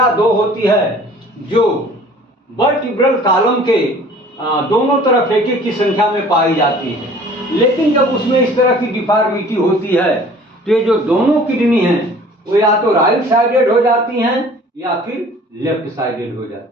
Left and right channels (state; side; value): normal; both; correlation 0.49